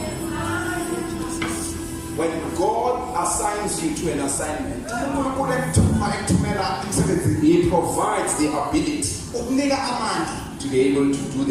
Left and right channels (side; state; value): both; identical; correlation 1.00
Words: When God assigns you to an assignment, He provides the ability to be able to do